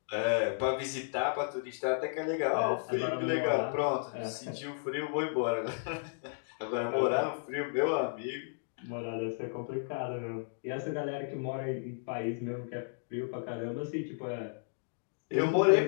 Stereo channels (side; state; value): right; silent; digital silence